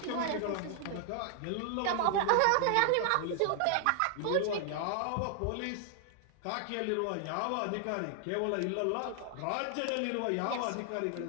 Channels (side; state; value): both; different; correlation 0.00